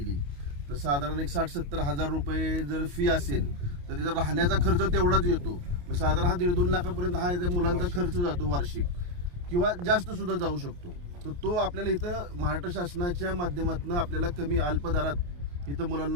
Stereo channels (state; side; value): late; left; 28 ms